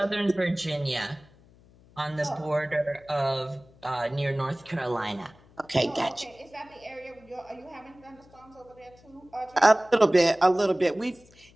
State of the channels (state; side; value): noise; left; hum, 27 dB below the sound